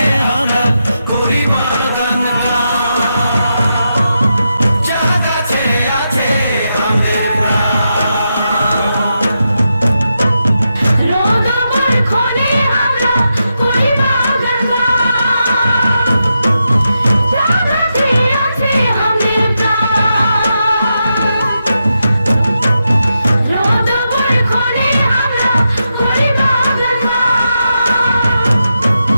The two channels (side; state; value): both; inverted; correlation -0.86